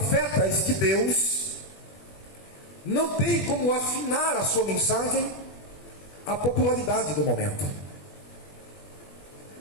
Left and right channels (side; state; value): right; late; 20 ms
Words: de Deus não tem como afinar a sua mensagem à popularidade do momento.